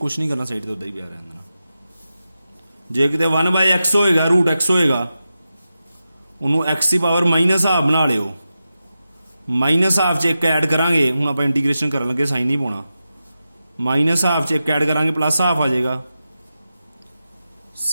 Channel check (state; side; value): inverted; both; correlation -0.91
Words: ਨਹੀਂ ਕਰਨਾ, ਸਾਈਡ ਤੇ ਉੱਦਾਂ ਹੀ ਪਿਆ ਰਹਿਣ ਦੇਣਾ। ਜੇ ਕਿਤੇ 1/x ਹੋਏਗਾ, √x ਹੋਏਗਾ, ਉਹਨੂੰ x ਦੀ ਪਾਵਰ -ਹਾਫ ਬਣਾ ਲਿਓ, -ਹਾਫ 'ਚ ਇੱਕ ਐਡ ਕਰਾਂਗੇ, ਹੁਣ ਆਪਾਂ ਇੰਟੀਗ੍ਰੇਸ਼ਨ ਕਰਨ ਲੱਗੇ ਸਾਈਨ ਨਹੀਂ ਪਾਉਣਾ, -ਹਾਫ 'ਚ ਇੱਕ ਐਡ ਕਰਾਂਗੇ +ਹਾਫ ਆ ਜਾਏਗਾ,